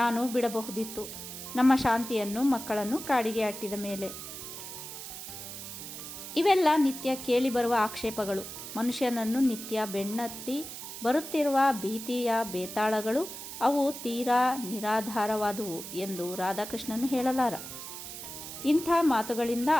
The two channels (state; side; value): noise; right; hiss, 10 dB below the sound